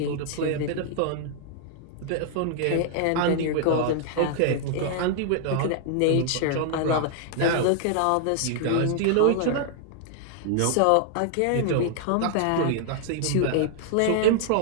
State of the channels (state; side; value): different; both; correlation -0.01